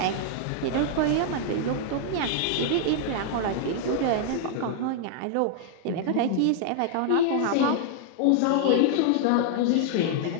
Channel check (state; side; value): different; both; correlation -0.01